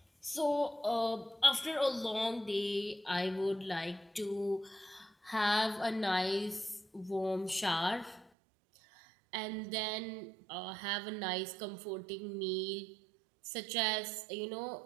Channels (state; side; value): drops out; left; at 8.3 s